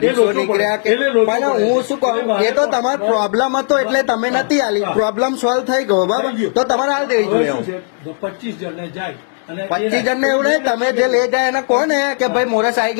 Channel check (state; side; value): silent; right; digital silence